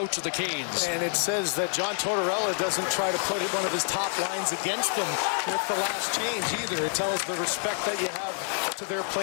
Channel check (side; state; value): right; silent; 58 dB below the other